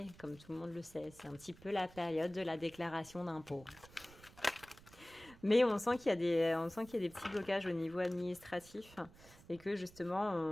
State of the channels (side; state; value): right; noise; rumble, 22 dB below the sound